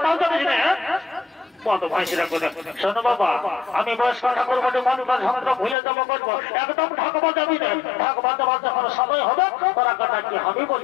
জানিস না কত ভাইসিরা করে শোনো বাবা আমি বয়স্ক ঠাকুর বটে মানুষের যন্ত্র ভুলে যাবো করবো একদম ঢাক বাজাবি না ঢাক বাজাবার যখন সময় হবে তোরা কথা কি আমি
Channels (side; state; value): right; drops out; at 5.8 s